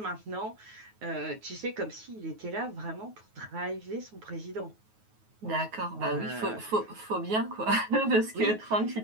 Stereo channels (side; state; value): left; late; 9.3 ms